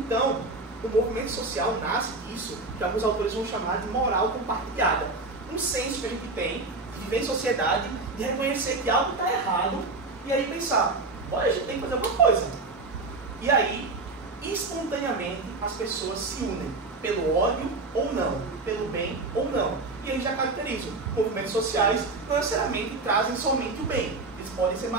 o movimento social nasce disso, que alguns autores vão chamar de moral compartilhada. Um senso que a gente tem de viver em sociedade, de reconhecer que algo está errado, e aí pensar, olha, a gente tem que fazer alguma coisa. E aí, espontaneamente, as pessoas se unem, pelo ódio ou não, pelo bem ou não. E aí já caracterizo. Movimentos sociais não necessariamente trazem somente o bem. Eles podem ser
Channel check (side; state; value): left; quieter; 3.4 dB